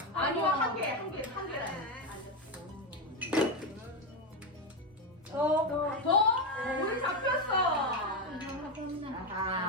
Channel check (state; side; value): normal; both; correlation 0.10